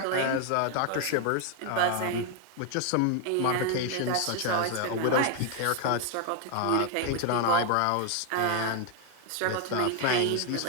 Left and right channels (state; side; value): different; both; correlation 0.01